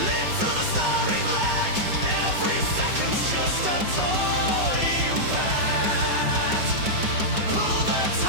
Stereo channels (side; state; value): left; late; 5.3 ms